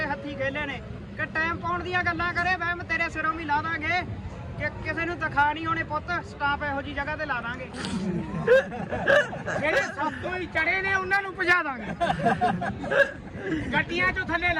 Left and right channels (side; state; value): both; identical; correlation 1.00